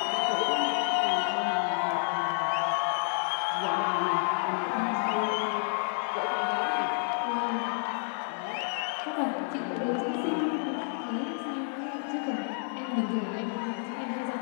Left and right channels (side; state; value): right; silent; 58 dB below the other